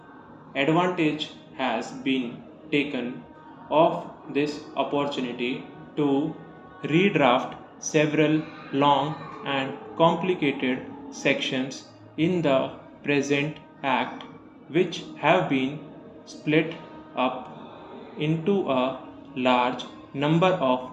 Advantage has been taken of this opportunity to redraft several long and complicated sections in the present Act, which have been split up into a large number of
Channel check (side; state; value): both; identical; correlation 1.00